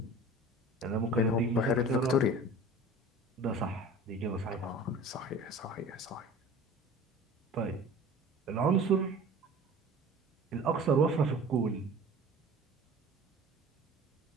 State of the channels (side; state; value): both; normal; correlation 0.41